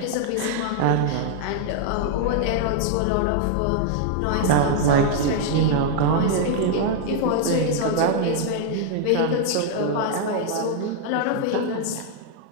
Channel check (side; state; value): both; different; correlation 0.00